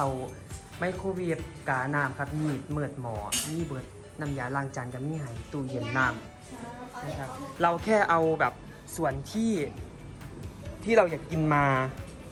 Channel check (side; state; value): both; identical; correlation 1.00